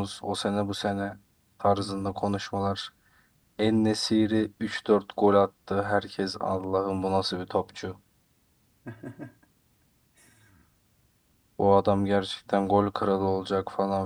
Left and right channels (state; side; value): identical; both; correlation 1.00